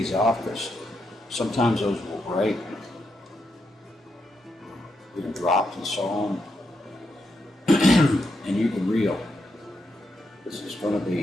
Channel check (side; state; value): both; normal; correlation 0.82